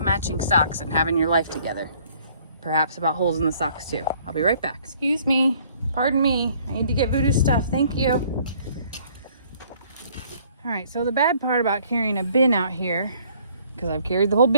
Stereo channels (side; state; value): both; inverted; correlation -0.60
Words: matching socks and having your life together. Perhaps about holes in the socks too. I'll be right back. Excuse me. Pardon me. I need to get Voodoo stuff. Thank you. All right, so the bad part about carrying a bin out here, because I've carried the whole